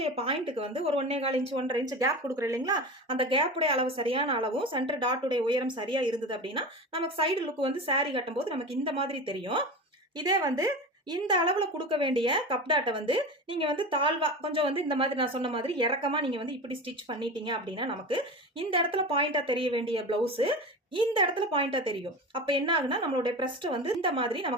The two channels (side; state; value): both; normal; correlation 0.28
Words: பாயிண்ட்டுக்கு வந்து ஒரு 1.25 இன்ச் 1.5 இன்ச் கேப் கொடுக்குறோம் இல்லைங்களா, அந்த கேப்புடைய அளவு சரியான அளவும் சென்டர் டாட்டுடைய உயரம் சரியா இருந்தது அப்படின்னா நமக்கு சைடு லுக் வந்து சாரி கட்டும் போது நமக்கு இந்த மாதிரி தெரியும். இதே வந்து இந்த அளவுல கொடுக்க வேண்டிய கப் டாட்டை வந்து நீங்க வந்து தாழ்வா கொஞ்சம் வந்து இந்த மாதிரி நான் சொன்ன மாதிரி இறக்கமா நீங்க வந்து இப்படி ஸ்டிச் பண்ணிட்டீங்க அப்படின்னா நமக்கு இந்த இடத்துல பாயிண்டா தெரிய வேண்டிய பிளவுஸ் இந்த இடத்துல பாயிண்டா தெரியும். அப்ப என்ன ஆகுனா நம்மளுடைய பிரஸ்ட் வந்து இந்த மாதிரி